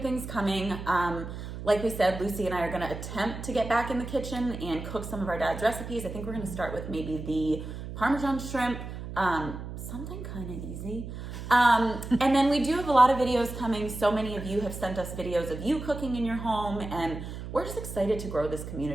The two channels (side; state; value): right; noise; hum, 9 dB below the sound